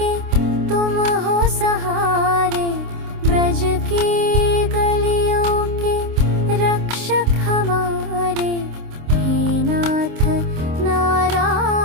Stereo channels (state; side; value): late; left; 26 ms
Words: तुम हो सहारे, ब्रज की गलियों के रक्षक हमारे, हे नाथ